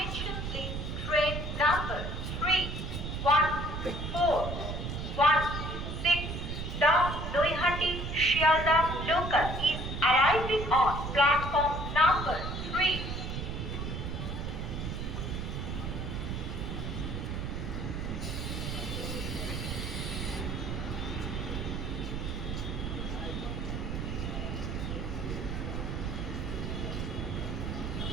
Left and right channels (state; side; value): noise; right; rumble, 4 dB below the sound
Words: please? Train number 3 1 4 1 6 Naihati Sealdah local is arriving on platform number 3.